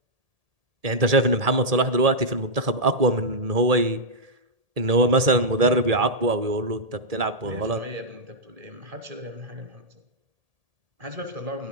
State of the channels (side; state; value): left; late; 1.8 ms